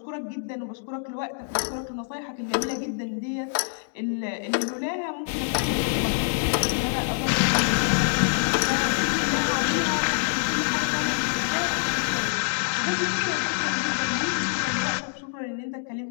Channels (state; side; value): silent; right; digital silence